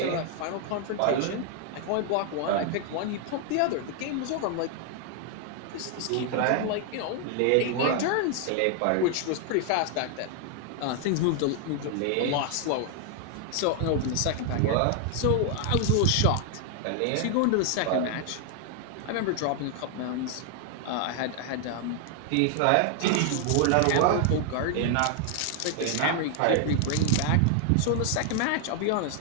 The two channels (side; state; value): both; different; correlation 0.00